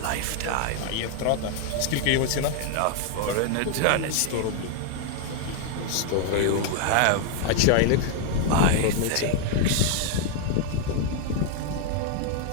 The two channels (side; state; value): both; different; correlation 0.00